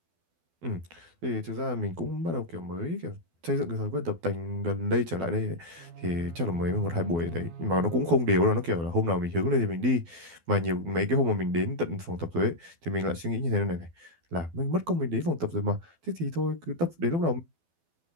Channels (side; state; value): left; late; 12 ms